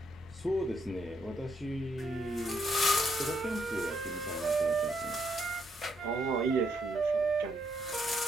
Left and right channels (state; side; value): normal; both; correlation 0.75